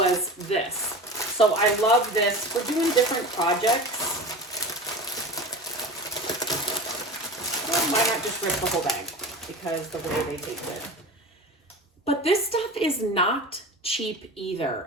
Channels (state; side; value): normal; both; correlation 0.32